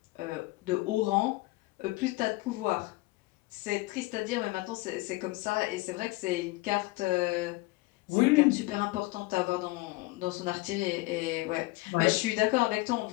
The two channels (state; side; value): quieter; right; 21.5 dB